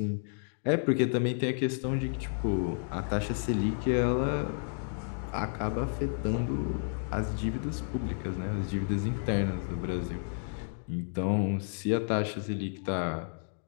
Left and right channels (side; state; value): right; silent; digital silence